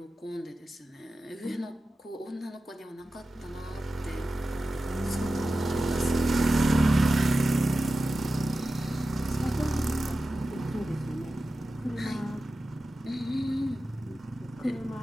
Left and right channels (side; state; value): both; normal; correlation 0.93